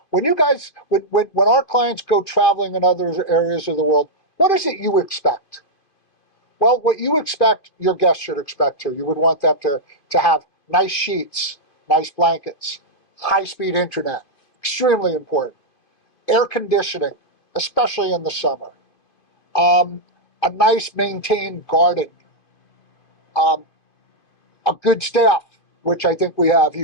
When our clients go traveling in other areas of the world, what is it you expect? Well, what you expect, your guests should expect too. You would want them to have nice sheets, nice blankets, high-speed internet, extremely important. Air conditioning, especially in the summer. A nice maintained garden. A good staff, which I think we have.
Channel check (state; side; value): late; right; 2.5 ms